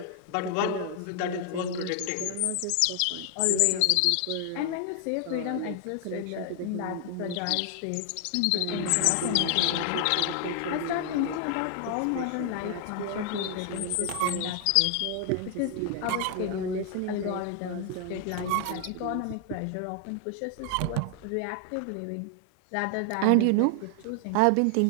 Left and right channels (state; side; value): different; both; correlation 0.00